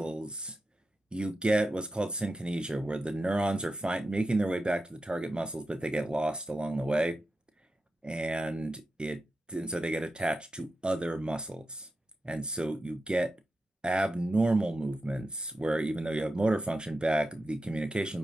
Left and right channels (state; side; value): normal; both; correlation 0.90